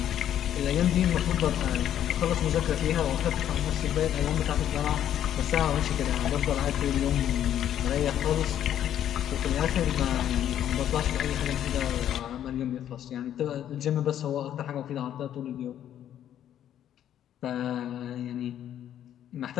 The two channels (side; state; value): right; quieter; 10.7 dB